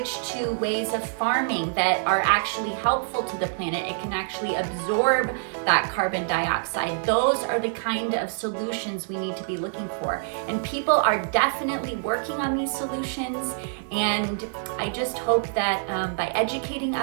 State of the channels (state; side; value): silent; left; digital silence